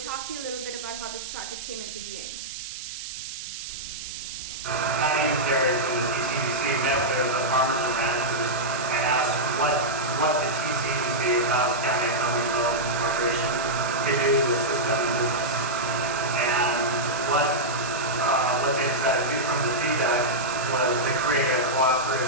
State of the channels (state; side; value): noise; right; hiss, 9 dB below the sound